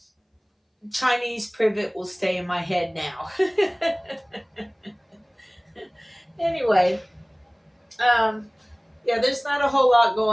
Chinese privet will stay in my head now. Anyway, yeah, there's not a whole lot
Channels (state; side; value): identical; both; correlation 1.00